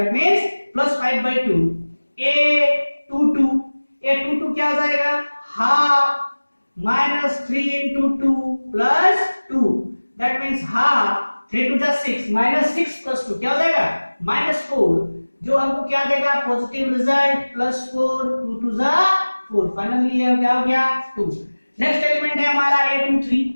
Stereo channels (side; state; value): both; inverted; correlation -1.00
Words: मींस +5/2। A22 क्या हो जाएगा half -3 into 2 + 2 that means half 3 2 जा 6 -6 + 2 क्या हो जाएगा -4, जो हमको क्या देगा पॉजिटिव रिजल्ट +4 2 2 जा 4, फाइनली ये क्या हो गया 2। नेक्स्ट एलिमेंट है हमारा A23,